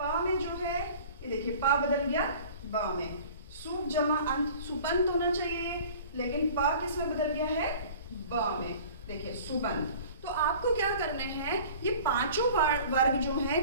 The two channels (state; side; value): inverted; both; correlation -0.45